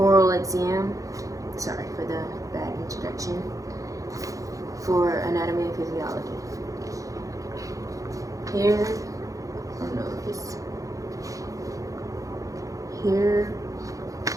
exam. Sorry for the bad introduction. For anatomy and physiology. Here, oh no, it's here.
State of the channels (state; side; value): late; left; 0.16 ms